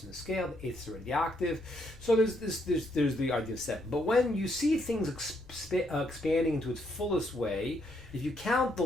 in the scale, the 8th is already the octave. So there's the idea of 7. But when you see things expanding into its fullest way, if you count the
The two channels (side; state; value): both; normal; correlation 0.74